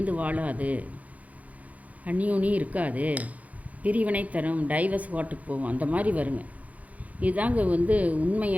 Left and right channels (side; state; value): left; late; 0.071 ms